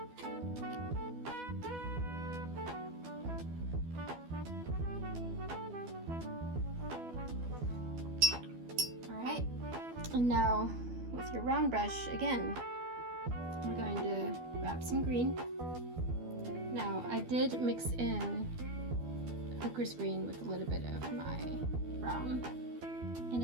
All right, and now with your round brush again, we're going to grab some green. Now I did mix in hooker's green with a little bit of my brown and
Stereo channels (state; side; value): late; left; 12 ms